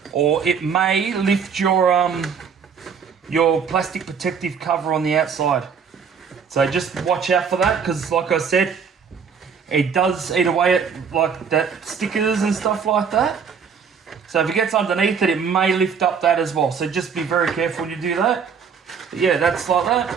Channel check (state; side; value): quieter; left; 6.5 dB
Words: or it may lift your plastic protective cover on the outside. So just watch out for that, because like I said, it does eat away at like that stickers and stuff like that. So if it gets underneath it, it may lift up that as well. So just be very careful when you do that. But yeah, that's like that.